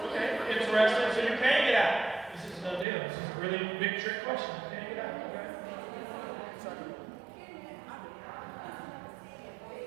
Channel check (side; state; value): left; drops out; at 2.9 s